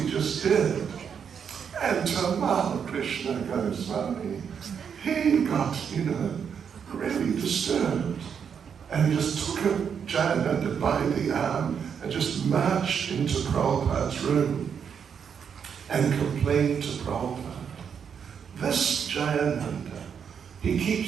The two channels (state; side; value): quieter; left; 7.3 dB